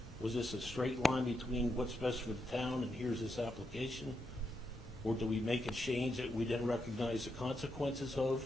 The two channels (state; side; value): normal; both; correlation 0.83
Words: was this a straight line between what's best for the town and here's this application? Or do we make a change that we didn't recognize the consequences of?